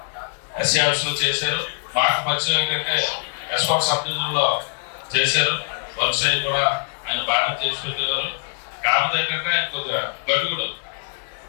ఆఫీస్ లో చేశారు. మాకు పరిచయం ఏంటంటే ఎస్కాట్ సబ్ డివిజన్లో చేశారు. వర్క్ సైడ్ కూడా ఆయన బాగా చేసి పెట్టేవారు. కాకపోతే ఏంటంటే ఆయన కొద్దిగా గడుగుడు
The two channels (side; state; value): right; silent; 64 dB below the other